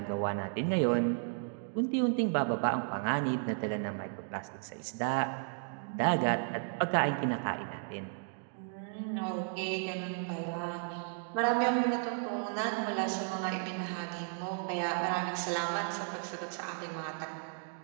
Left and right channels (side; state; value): left; silent; 55 dB below the other